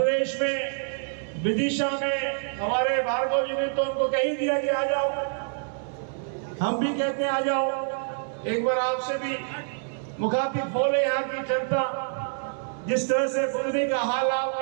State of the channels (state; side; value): silent; left; 60 dB below the other